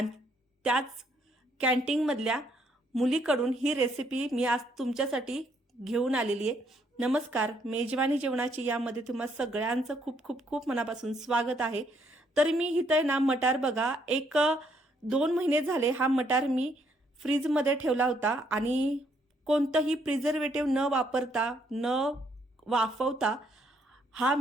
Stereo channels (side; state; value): both; normal; correlation 0.70